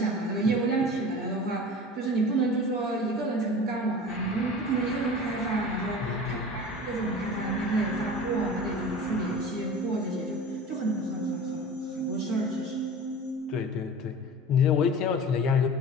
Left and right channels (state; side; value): normal; both; correlation 0.37